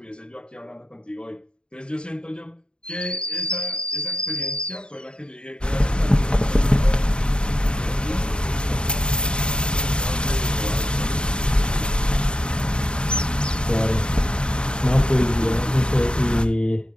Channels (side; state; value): right; late; 0.051 ms